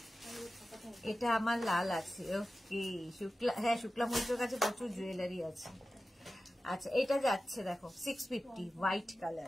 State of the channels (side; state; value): both; normal; correlation 0.94